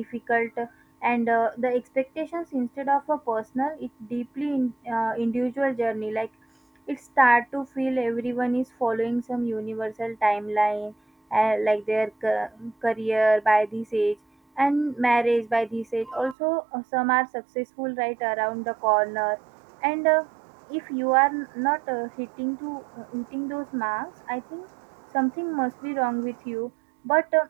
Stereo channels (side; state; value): left; drops out; at 16.4 s